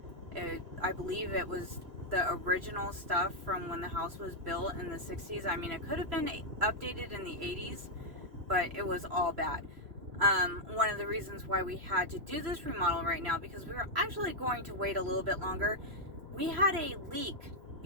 I believe it was the original stuff from when the house was built in the 60s. I mean, it could have been updated in the 80s, but it was all bad. One of the reasons why we had to do this remodel right now, because we were actually going to wait a little bit longer. We had a leak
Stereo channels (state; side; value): late; left; 2.9 ms